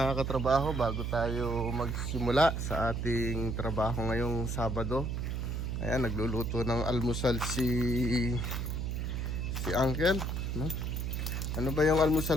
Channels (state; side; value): noise; right; hum, 2 dB below the sound